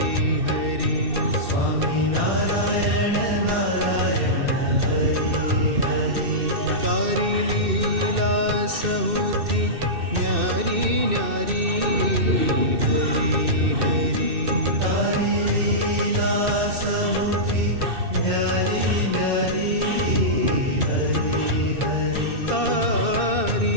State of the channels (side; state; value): left; late; 2.6 ms